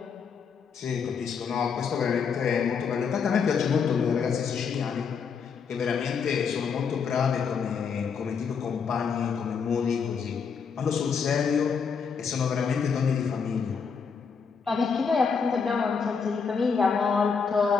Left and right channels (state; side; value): quieter; right; 6.0 dB